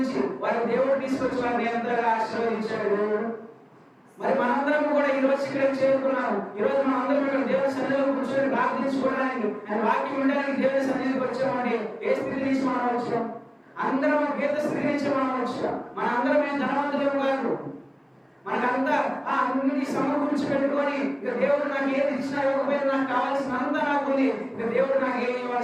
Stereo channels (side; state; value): both; identical; correlation 1.00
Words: వారి దేవుడు తీసుకొచ్చి వారిని ఎంతగా ఆశీర్వదించాడు దేవుడు. మరి మనందరం కూడా ఈ రోజు ఇక్కడికి చేరుకున్నాము. ఈ రోజు మనం అందరం ఇక్కడ దేవుని సన్నిధిలో కూర్చొని ప్రార్థించుకోవడానికి, ఆయన వాక్యం వినడానికి దేవుని సన్నిధికి వచ్చామండి. ఏ స్థితి నుంచి మనం వచ్చాం? అందరం పేద స్థితి నుంచి మనం వచ్చాం. మన అందరం ఏం ధనవంతులేం కాదు. మనకంతా అన్నిటి సమకూర్చి పెట్టుకొని ఇక దేవుడు నాకు ఏది ఇచ్చినా ఇవ్వకపోయినా నాకు కావాల్సిన అంతా నాకు ఉంది, ఇక దేవుడు నాకు ఏమి